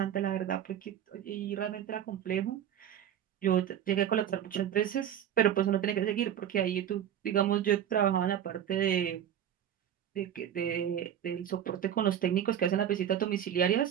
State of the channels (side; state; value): left; quieter; 9.9 dB